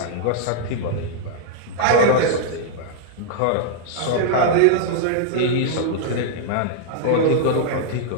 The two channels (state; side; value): different; both; correlation -0.01